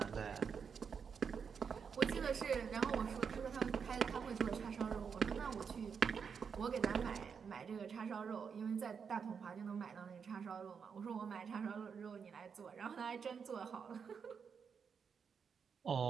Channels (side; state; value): left; quieter; 6.4 dB